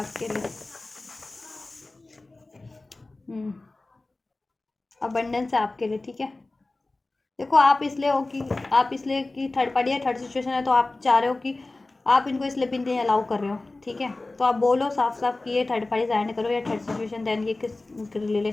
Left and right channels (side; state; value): right; quieter; 3.1 dB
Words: लिए। अबंडेंस है आपके लिए, ठीक है। देखो, आप इसलिए कि थर्ड पार्टी या थर्ड सिचुएशन है, तो आप चाह रहे हो कि आप इनको इसलिए भी नहीं अलाउ कर रहे हो, ठीक है। तो आप बोलो साफ साफ कि ये थर्ड पार्टी एंड करो या थर्ड सिचुएशन, देन ये किस